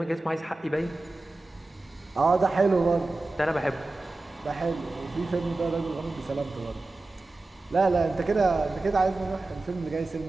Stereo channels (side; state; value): left; quieter; 3.1 dB